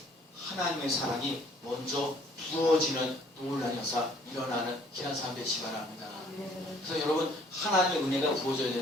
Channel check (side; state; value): both; normal; correlation 0.59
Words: 하나님의 사랑이 먼저 부어지는 놀라운 역사 일어나는 귀한 삶 되시기 바랍니다. 그래서 여러분 하나님의 은혜가 부어져야